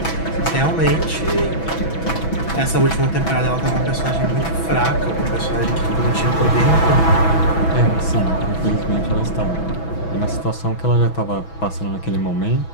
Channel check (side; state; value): right; late; 6.1 ms